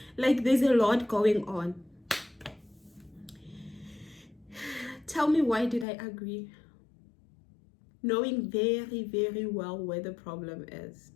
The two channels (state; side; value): drops out; right; at 5.9 s